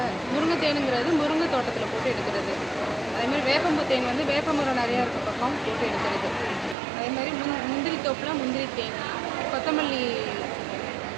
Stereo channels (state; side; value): drops out; left; at 6.8 s